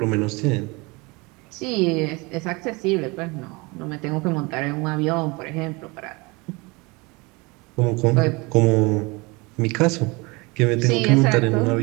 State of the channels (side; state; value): left; quieter; 26.0 dB